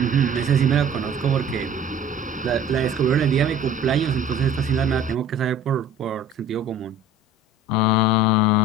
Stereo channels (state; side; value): normal; both; correlation 0.46